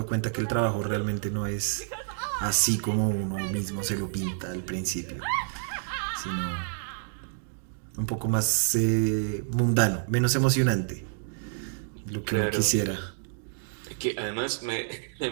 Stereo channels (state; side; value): silent; left; digital silence